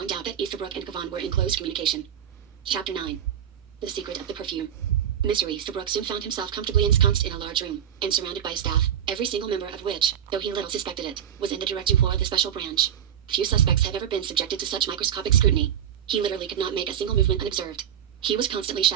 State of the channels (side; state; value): left; quieter; 9.6 dB